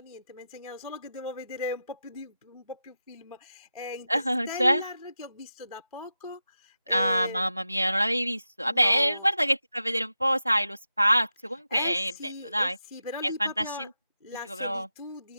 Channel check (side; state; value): both; inverted; correlation -0.91